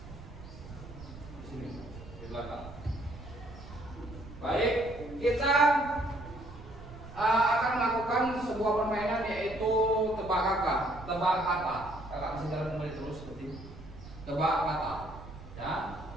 Di sini, di belakang. Baik, kita akan melakukan sebuah permainan yaitu tebak kata. Kakak bisa jalan kembali terus seperti tebak kata. Ya,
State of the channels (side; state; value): right; noise; rumble, 15 dB below the sound